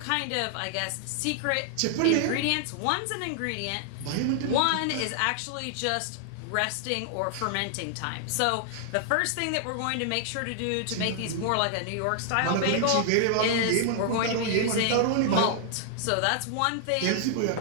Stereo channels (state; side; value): different; both; correlation -0.01